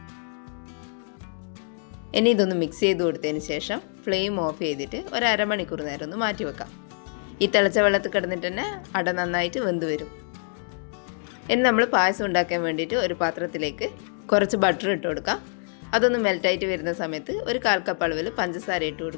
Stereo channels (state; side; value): silent; right; 59 dB below the other